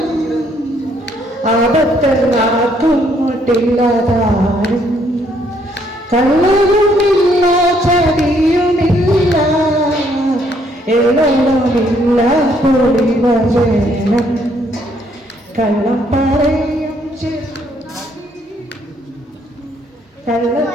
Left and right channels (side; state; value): both; normal; correlation 0.68